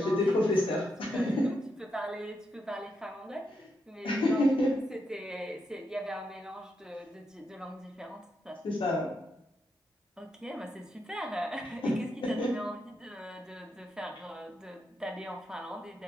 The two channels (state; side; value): normal; both; correlation 0.82